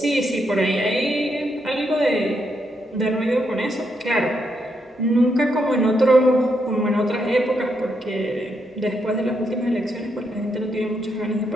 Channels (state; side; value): normal; both; correlation 0.79